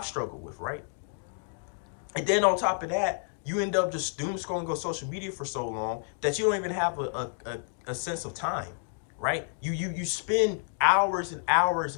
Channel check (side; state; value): right; silent; 58 dB below the other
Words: struggled with, right? And then on top of that, you end up just doom scrolling on social media for so long that you don't even have a sense of time, right? You spend hours and hours